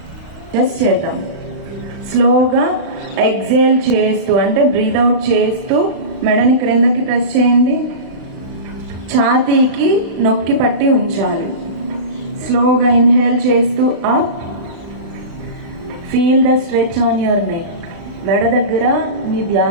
జస్ట్ చేద్దాం. స్లోగా ఎక్సేల్ చేస్తూ, అంటే బ్రీత్ అవుట్ చేస్తూ మెడని క్రిందకి ప్రెస్ చేయండి. ఛాతీకి నొక్కి పట్టి ఉంచాలి. స్లోగా ఇన్హేల్ చేస్తూ up. Feel the stretch on your neck. మెడ దగ్గర మీ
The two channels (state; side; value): late; left; 36 ms